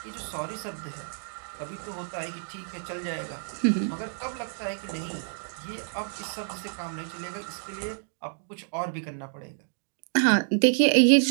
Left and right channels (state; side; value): silent; left; digital silence